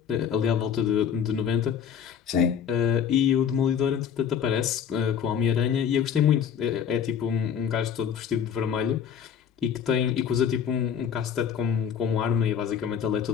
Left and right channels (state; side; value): quieter; right; 7.9 dB